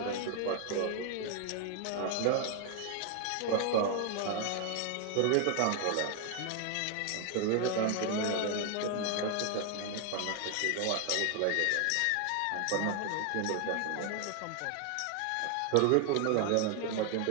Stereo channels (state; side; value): different; both; correlation 0.00